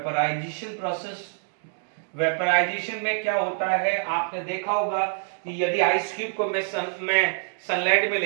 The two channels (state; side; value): silent; left; digital silence